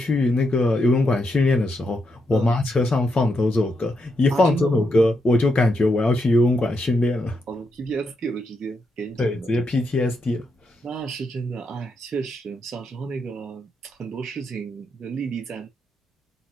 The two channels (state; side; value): normal; both; correlation 0.82